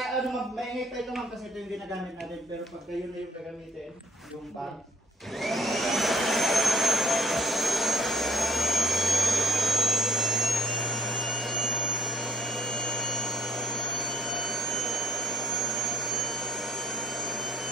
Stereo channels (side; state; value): both; normal; correlation 0.62